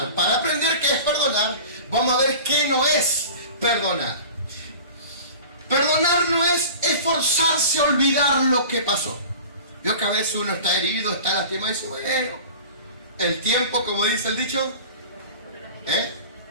Para aprender qué es perdonar, vamos a ver qué no es perdonar. Perdonar no es esforzarse a olvidar lo que pasó. Vio que a veces uno está herido, está lastimado y dice: bueno, el tiempo, como dice el dicho,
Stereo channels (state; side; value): inverted; both; correlation -0.38